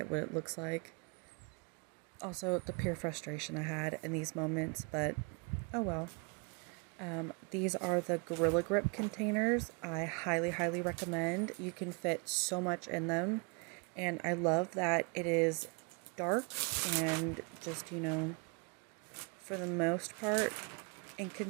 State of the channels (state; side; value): quieter; left; 34.1 dB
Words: what it looks like. Also, the pure frustration I had in these moments, but oh well. These are the Gorilla Grip containers. I highly, highly recommend. You can fit so much in them, and I love that it is dark and just, for the most part,